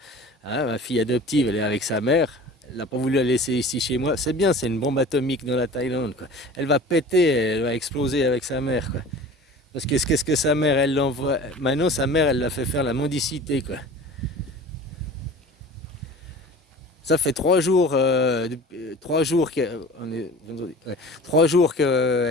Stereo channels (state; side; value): normal; both; correlation 0.40